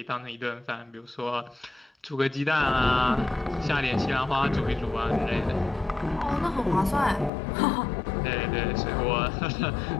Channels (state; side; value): drops out; right; at 7.3 s